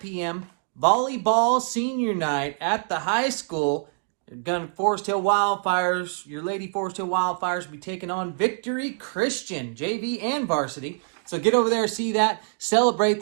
p.m., volleyball senior night at the high school. Forest Hill Wildfires, your Lady Forest Hill Wildfires will be taking on Victory Christian, JV and varsity. So get over there, see that. Celebrate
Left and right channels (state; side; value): silent; left; digital silence